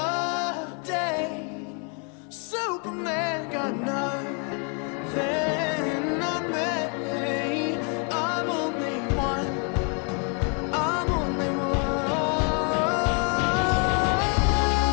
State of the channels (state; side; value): quieter; right; 37.8 dB